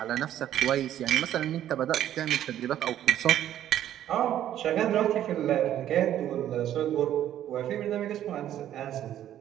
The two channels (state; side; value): quieter; left; 11.5 dB